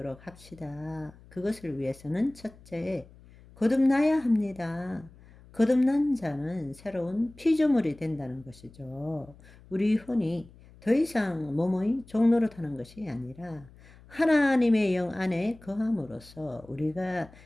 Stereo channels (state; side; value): noise; left; hum, 23 dB below the sound